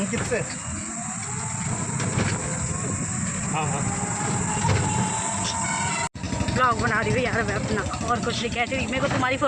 से हाँ हाँ ब्लॉग बना रही हूँ यार मैं अपना, और कुछ नहीं कह रही। मेरे को तुम्हारी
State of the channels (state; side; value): identical; both; correlation 1.00